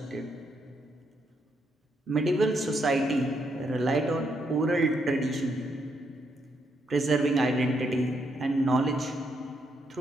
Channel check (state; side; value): normal; both; correlation 0.77